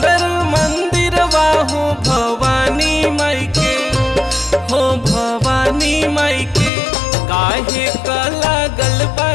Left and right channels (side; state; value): right; drops out; at 6.7 s